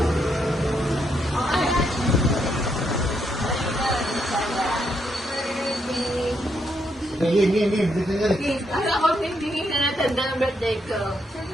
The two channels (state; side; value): normal; both; correlation 0.77